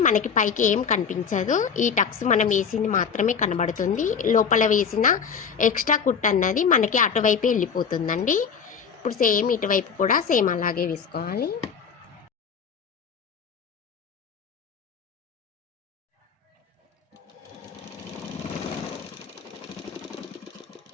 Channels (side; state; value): right; quieter; 6.5 dB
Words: మనకి పైకి ఏం కనిపించదు. ఈ టక్స్ మనం వేసింది మాత్రమే కనబడుతుంది. లోపల వేసిన ఎక్స్ట్రా కుట్టు అన్నది మనకి అటువైపే వెళ్ళిపోతుందండి. ఇప్పుడు సేమ్ ఇటువైపు కూడా సేమ్ అలాగే వేసుకోవాలి.